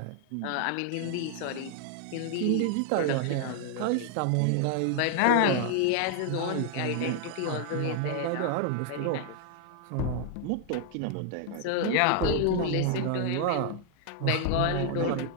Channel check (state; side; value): different; both; correlation 0.00